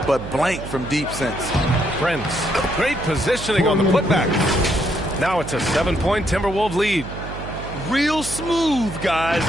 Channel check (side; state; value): right; noise; hum, 10 dB below the sound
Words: but blank from deep since. Prince. Great positioning on the putback. Now it's a 7-point Timberwolves lead. Real smooth, guys.